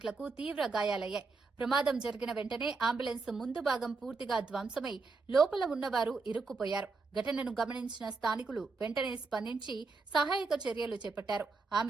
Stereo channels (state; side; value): quieter; left; 4.1 dB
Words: తీవ్ర గాయాలయ్యాయి. ప్రమాదం జరిగిన వెంటనే అంబులెన్స్ ముందు భాగం పూర్తిగా ధ్వంసమై లోపల ఉన్నవారు ఇరుక్కుపోయారు. ఘటనను గమనించిన స్థానికులు వెంటనే స్పందించి సహాయక చర్యలు చేపట్టారు.